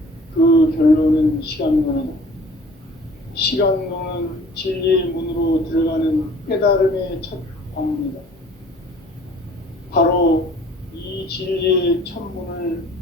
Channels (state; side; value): normal; both; correlation 0.50